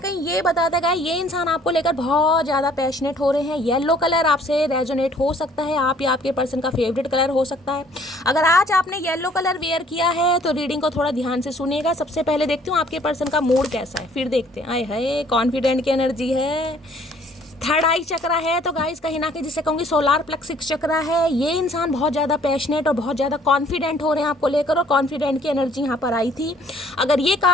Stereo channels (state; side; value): normal; both; correlation 0.59